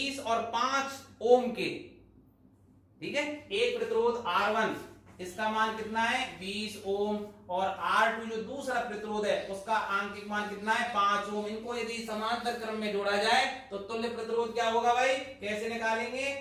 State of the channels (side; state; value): both; identical; correlation 1.00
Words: और 5 ओम के, ठीक है, एक प्रतिरोध R1 इसका मान कितना है? 20 ओम, और R2 जो दूसरा प्रतिरोध है उसका आंकिक मान कितना है? 5 ओम। इनको यदि समांतर क्रम में जोड़ा जाए तो तुल्य प्रतिरोध क्या होगा भाई? कैसे निकालेंगे?